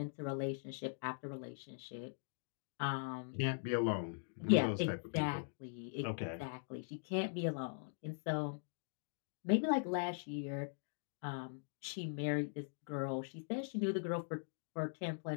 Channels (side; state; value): right; silent; digital silence